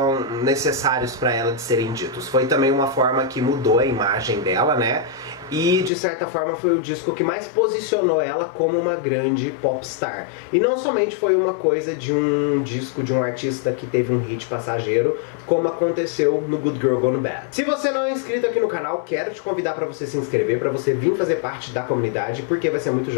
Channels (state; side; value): drops out; right; at 5.9 s